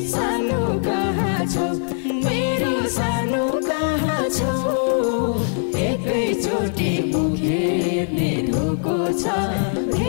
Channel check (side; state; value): right; silent; digital silence